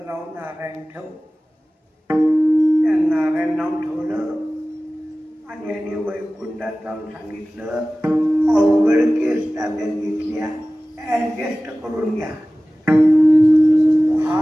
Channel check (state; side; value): normal; both; correlation 0.97